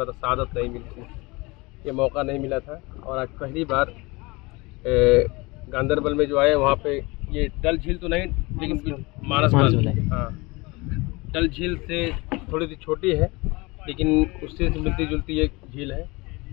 था, सआदत नहीं मिली थी, ये मौका नहीं मिला था। और आज पहली बार गांदरबल में जो आए वहाँ पे ये डल झील तो नहीं लेकिन मानस बल, हाँ डल झील से थोड़ी सी छोटी है लेकिन उससे मिलती जुलती एक झील है।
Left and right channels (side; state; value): right; quieter; 24.6 dB